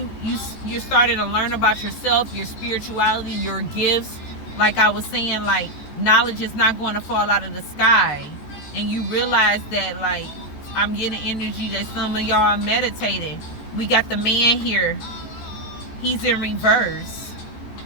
starting to learn about yourself, your spirituality, your gifts. Like I was saying, like knowledge is not going to fall out of the sky. And you realize that, like, I'm getting energy that some of y'all are meditating. We got the man here. He's in reverse.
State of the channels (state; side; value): late; right; 14 ms